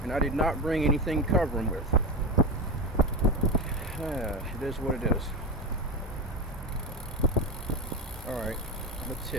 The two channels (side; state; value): both; normal; correlation 0.20